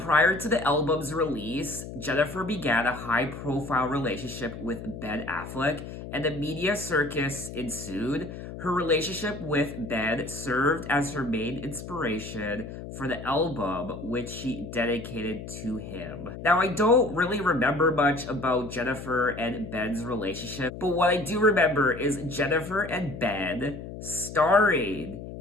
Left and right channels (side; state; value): left; noise; hum, 10 dB below the sound